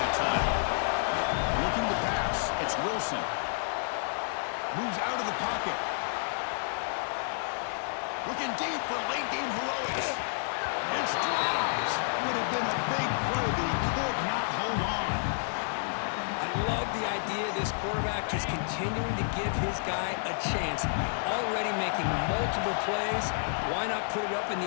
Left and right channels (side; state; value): right; silent; digital silence